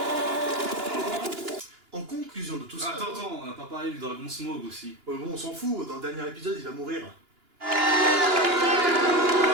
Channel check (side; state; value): left; late; 2.9 ms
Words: En conclusion, conclusion de tout ça. Attends, on n'a pas parlé du dragon Smog aussi. Ouais, bon, on s'en fout, dans le dernier épisode, il va mourir.